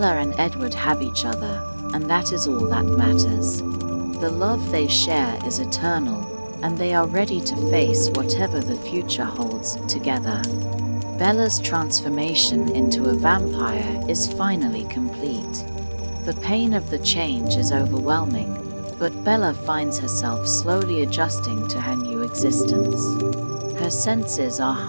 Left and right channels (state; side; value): inverted; both; correlation -1.00